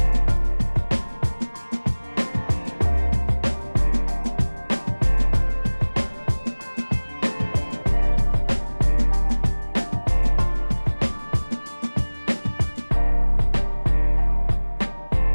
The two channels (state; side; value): inverted; both; correlation -1.00